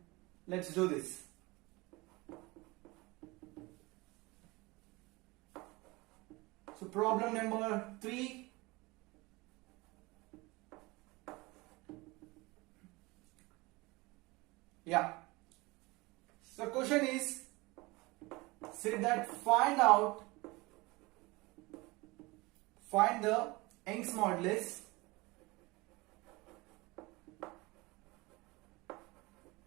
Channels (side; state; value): left; quieter; 23.2 dB